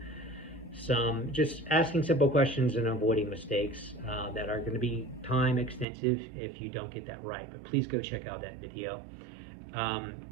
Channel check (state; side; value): drops out; left; at 5.9 s